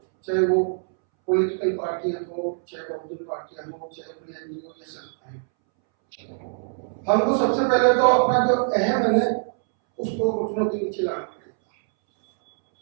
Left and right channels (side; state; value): left; silent; 63 dB below the other